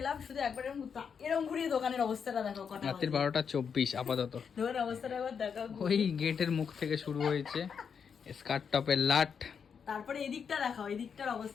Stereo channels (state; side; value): quieter; right; 6.7 dB